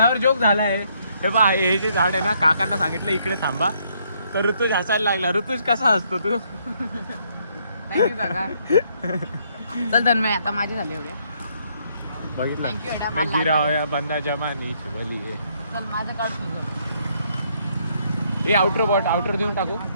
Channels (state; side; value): inverted; both; correlation -0.70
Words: जोक झालाय. हे बा, हे जे झाड आहे ना, काकांना सांगितलं इकडे थांबा, तर ऋतुज हसायला लागला. ऋतुज कसा हसतो तू? थँक्यू काका. चल तन्मय, आता माझे झाले एवढ्या. बघितलं, Thank you, Adam. मैं गिरा होया बंदा जमानीची बली आहे. चल माझं काढ तुझं. ए आउटर देऊन टाकू.